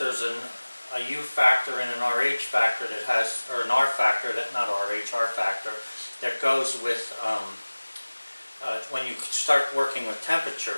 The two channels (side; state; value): both; inverted; correlation -1.00